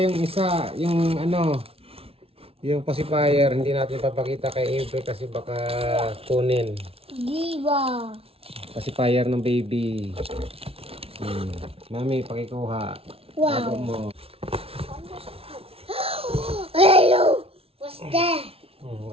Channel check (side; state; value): left; late; 0.28 ms